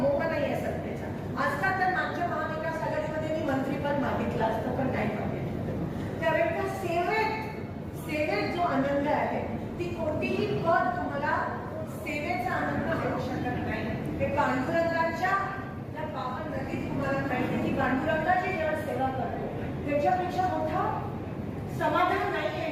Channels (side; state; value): both; identical; correlation 1.00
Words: नाही आहे सत्तेचा. आजकाल तर मागच्या महाविकास आघाडीमध्ये मी मंत्रीपद मागितलं असतं पण नाही मागितलं. त्यावेळेला सेवेत जो आनंद आहे ती कोणतीही पद तुम्हाला सेवेचा आनंद देऊ शकत नाही. ते पांडुरंगाच्या त्या पावन नदीत तुम्हाला माहिती की पांडुरंगाची जेव्हा सेवा करतो त्याच्यापेक्षा मोठं समाधान नाही